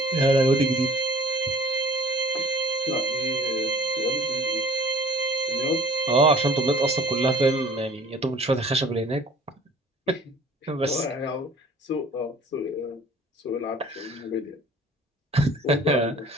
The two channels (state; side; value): normal; both; correlation 0.52